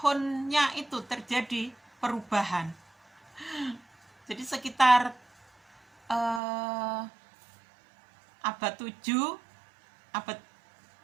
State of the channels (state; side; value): drops out; left; at 6.4 s